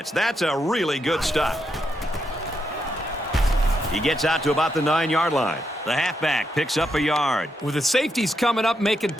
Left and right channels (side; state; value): both; normal; correlation 0.81